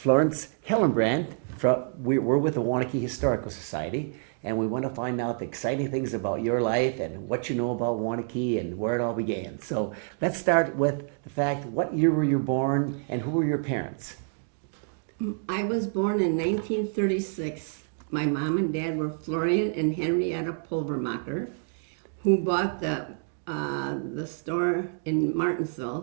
Hellenbrand. We're with the Waunakee Historical Society, and we want to find out the exciting things about your life and what you know about Waunakee and where it all began. So let's start with the fact, what year were you born, and who were your parents? I was born in 1936. My mom and dad were Florian and Henrietta Pulvermacher, who bought the store in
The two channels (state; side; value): silent; left; 60 dB below the other